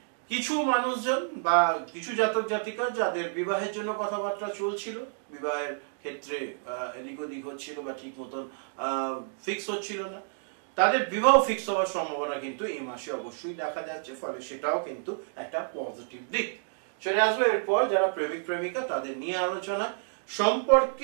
কিছু মানুষজন বা কিছু জাতক জাতিকা যাদের বিবাহের জন্য কথাবার্তা চলছিল, বিবাহের ক্ষেত্রে এদিক ওদিক হচ্ছিল বা ঠিক মতন ফিক্স হচ্ছিল না, তাদের বিবাহ ফিক্স হওয়ার সম্ভাবনা কিন্তু এই মাসে অবশ্যই দেখা যাচ্ছে, ফলে সেটাও কিন্তু একটা পজিটিভ দিক। চলে আসবে এরপর যারা প্রেমিক প্রেমিকা, তাদের নিয়ে আলোচনা।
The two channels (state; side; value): silent; left; digital silence